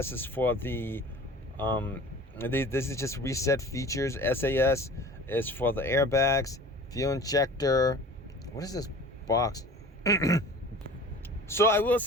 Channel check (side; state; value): both; normal; correlation 0.42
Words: is for the this is just reset features. SAS is for the airbags, fuel injector. What is this box? So I will